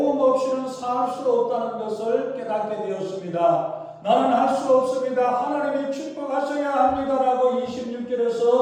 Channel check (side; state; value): both; identical; correlation 1.00